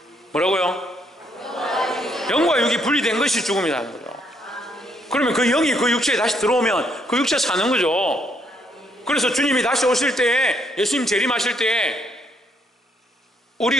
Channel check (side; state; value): both; normal; correlation 0.71